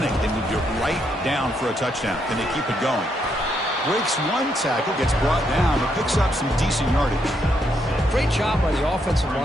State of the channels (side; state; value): both; normal; correlation 0.77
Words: They moved it right down for a touchdown. Can they keep it going? Breaks one tackle, gets brought down, but picks up some decent yardage. Great job by the offensive